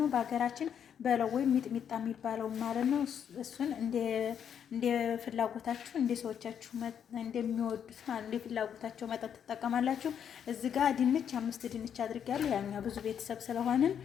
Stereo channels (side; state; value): right; quieter; 8.4 dB